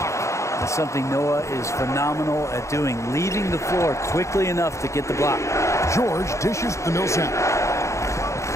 That's something Noah is phenomenal at doing, leaving the floor quickly enough to get the block. George dishes to Millsap.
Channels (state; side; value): late; right; 0.14 ms